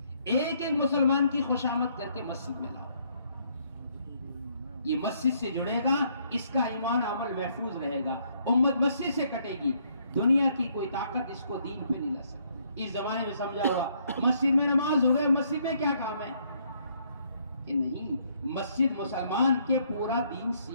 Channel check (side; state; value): both; inverted; correlation -0.69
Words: ایک ایک مسلمان کی خوشامد کر کے مسجد میں لاؤ. یہ مسجد سے جڑے گا, اس کا ایمان عمل محفوظ رہے گا. امت مسجد سے کٹے گی, دنیا کی کوئی طاقت اس کو دین پہ نہیں لا سکتی. اس زمانے میں سمجھا ہوگا مسجد میں نماز ہو گئے, مسجد میں کیا کام ہے, کہ نہیں, مسجد مسلمان کے پورا دین